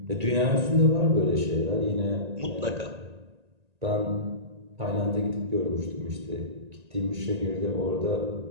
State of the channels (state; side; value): late; left; 1.9 ms